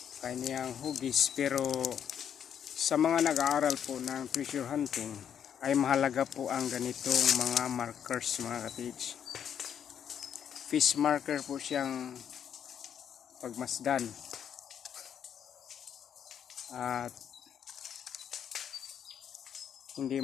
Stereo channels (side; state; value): right; quieter; 8.7 dB